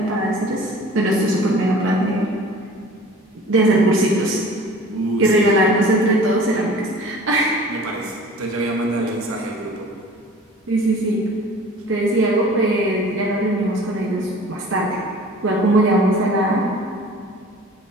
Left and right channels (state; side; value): normal; both; correlation 0.45